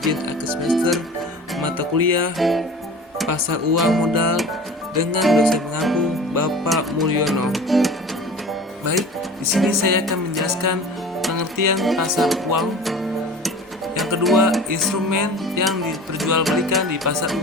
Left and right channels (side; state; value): both; normal; correlation 0.39